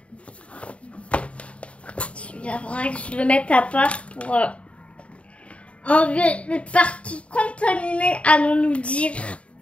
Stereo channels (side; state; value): right; late; 0.062 ms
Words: Il faudrait que je le mette à part pour enlever les parties contaminées, allons-nous dire.